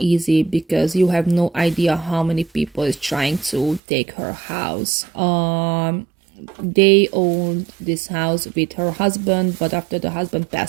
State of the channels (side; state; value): left; drops out; at 3.8 s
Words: because you have no idea how many people is trying to take her house. They owned this house with her husband, but after the husband